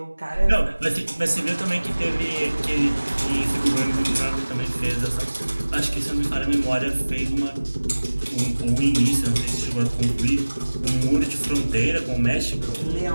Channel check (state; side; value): inverted; both; correlation -1.00